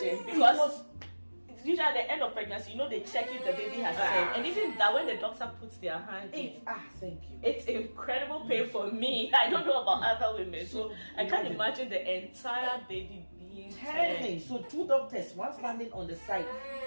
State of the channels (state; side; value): inverted; both; correlation -1.00